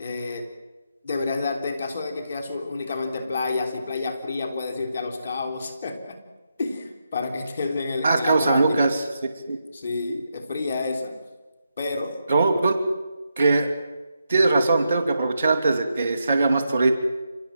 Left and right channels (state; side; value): inverted; both; correlation -0.84